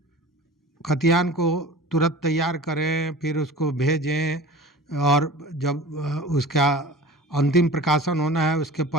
खतियान को तुरंत तैयार करें, फिर उसको भेजें और जब उसका अंतिम प्रकाशन होना है उसके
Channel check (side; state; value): both; normal; correlation 0.39